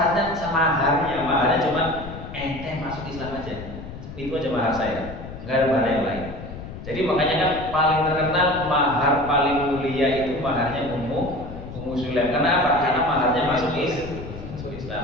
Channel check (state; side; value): noise; left; rumble, 11 dB below the sound